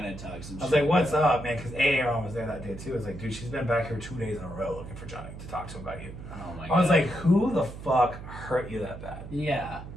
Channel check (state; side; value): noise; right; hum, 12 dB below the sound